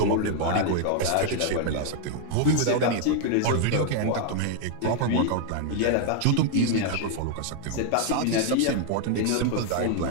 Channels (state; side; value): different; both; correlation 0.00